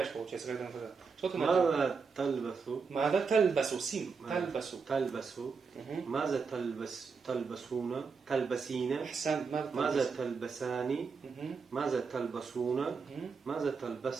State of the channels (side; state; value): left; quieter; 5.3 dB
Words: получается, когда надо. Что ты надеваешь? ماذا تلبث Мада тальбасу, сим, тальбасу. تلبس Мгм. ماذا تلبسون تلبسين Ахсан, мада ماذا тальбасу. تلبسان Мгм. ماذا تلبسون Мгм. ماذا